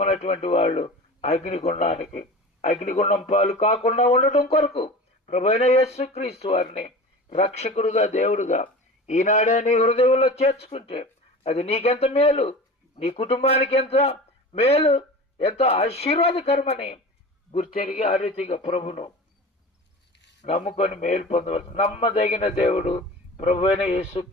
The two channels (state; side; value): normal; both; correlation 0.35